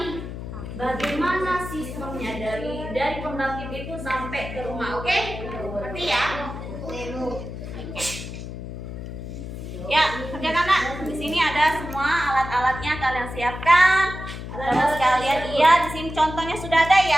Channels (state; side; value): noise; left; hum, 9 dB below the sound